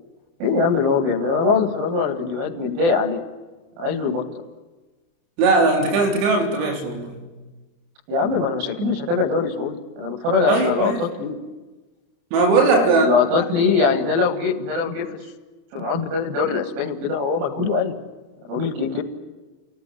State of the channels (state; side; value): late; left; 29 ms